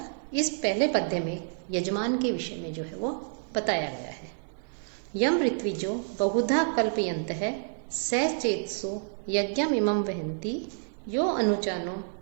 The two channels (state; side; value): silent; left; digital silence